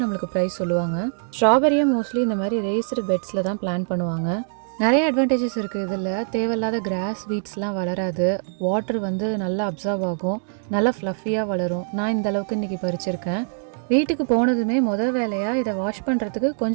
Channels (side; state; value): left; silent; digital silence